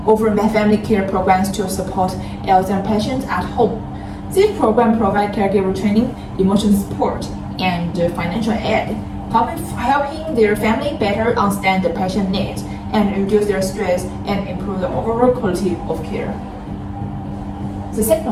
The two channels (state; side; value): identical; both; correlation 1.00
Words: offer family care programs to support Alzheimer's patients at home. These programs provide caregiver training, emotional support, and financial aid, helping their family better understand the patient needs and reduce their stress and improve the overall quality of care. The second